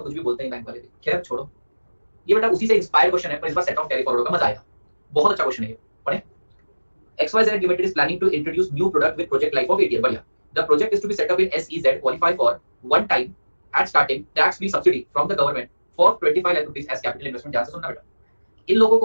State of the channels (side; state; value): both; inverted; correlation -1.00